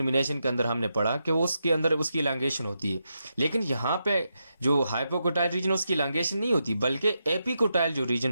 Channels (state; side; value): inverted; both; correlation -0.85